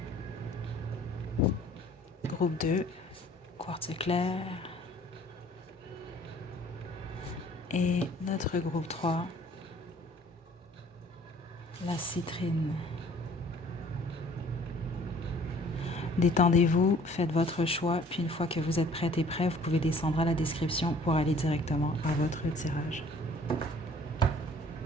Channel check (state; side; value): normal; both; correlation 0.55